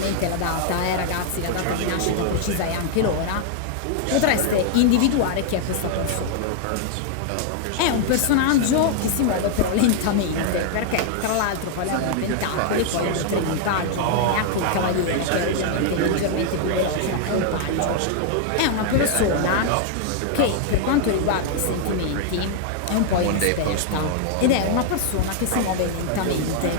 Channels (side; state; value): both; different; correlation 0.00